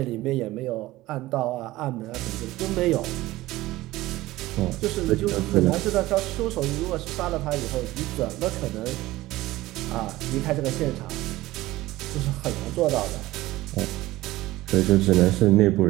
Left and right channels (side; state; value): left; quieter; 17.6 dB